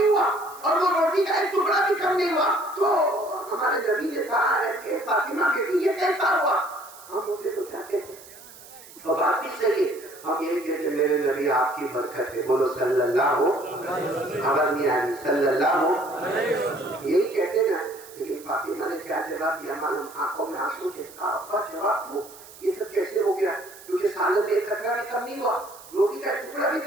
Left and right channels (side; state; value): right; noise; hiss, 19 dB below the sound